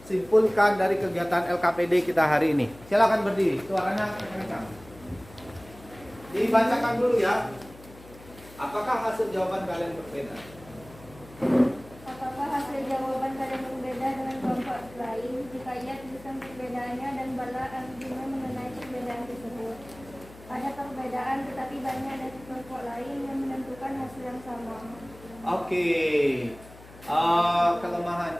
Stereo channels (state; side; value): noise; left; hum, 20 dB below the sound